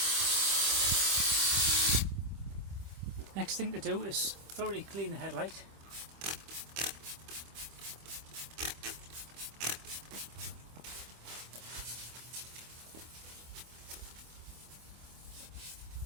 Next thing to do is thoroughly clean the headlight.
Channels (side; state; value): left; late; 25 ms